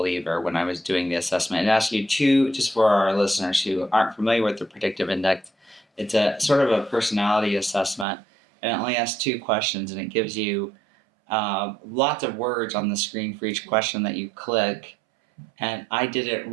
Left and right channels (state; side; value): drops out; left; at 8.1 s